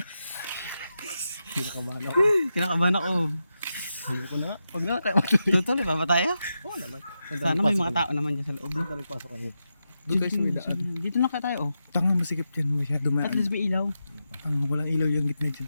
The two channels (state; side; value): inverted; both; correlation -0.89